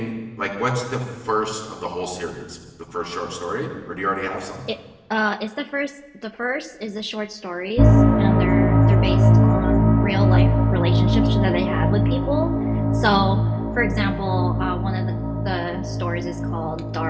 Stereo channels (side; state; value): both; identical; correlation 1.00